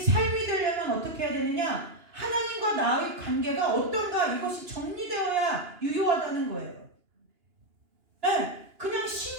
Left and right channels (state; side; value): late; left; 2.9 ms